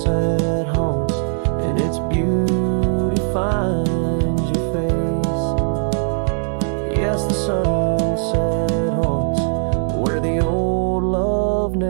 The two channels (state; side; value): silent; left; digital silence